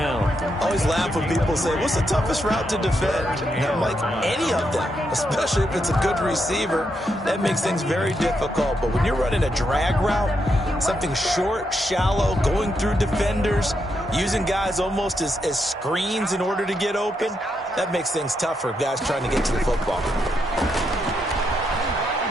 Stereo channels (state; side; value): normal; both; correlation 0.81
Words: I always laugh when people say, what's the toughest route to defend? And I'm like, any of them, especially if it's a good receiver. That makes things very difficult. But when you're running a drag route, something short, shallow, going through defenders, using guys almost as screens in order to get open, that makes things tough for guys trying to get to the football.